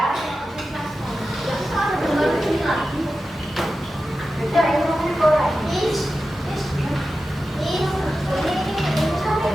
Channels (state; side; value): normal; both; correlation 0.92